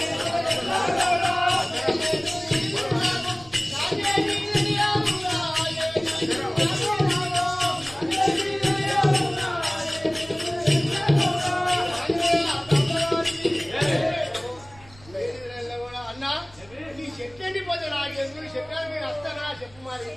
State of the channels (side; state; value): right; noise; rumble, 24 dB below the sound